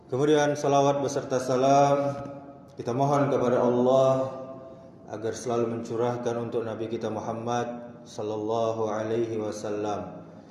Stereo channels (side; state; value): both; identical; correlation 1.00